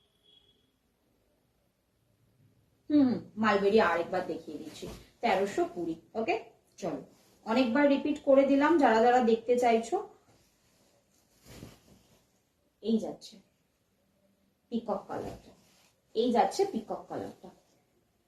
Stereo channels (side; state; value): both; identical; correlation 1.00